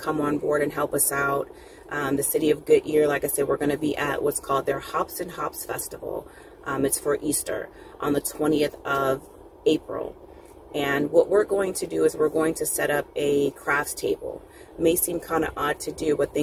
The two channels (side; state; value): both; identical; correlation 1.00